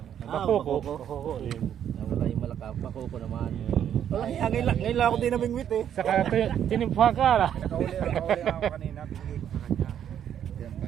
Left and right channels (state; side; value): quieter; left; 9.6 dB